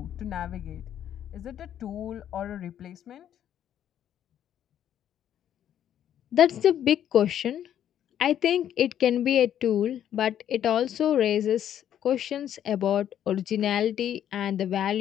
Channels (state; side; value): quieter; right; 10.3 dB